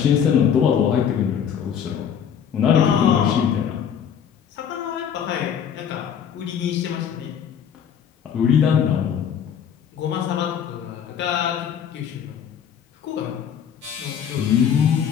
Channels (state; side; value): quieter; right; 8.2 dB